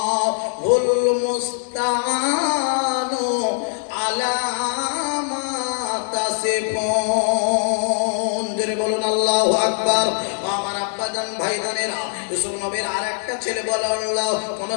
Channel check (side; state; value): right; silent; 61 dB below the other